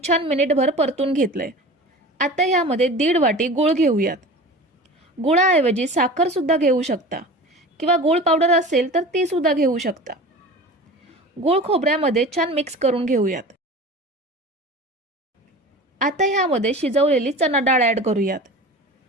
छान मिनिटभर परतून घेतलंय. आता ह्यामध्ये 1.5 वाटी गूळ घेऊयात. गुळाऐवजी साखर सुद्धा घेऊ शकता किंवा गूळ पावडर असेल तर ती सुद्धा घेऊ शकता. गूळ खोबऱ्यामध्ये छान मिक्स करून घेऊयात. आता ह्यामध्ये शिजवलेली चणा डाळ ॲड करूयात.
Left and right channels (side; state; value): both; normal; correlation 0.36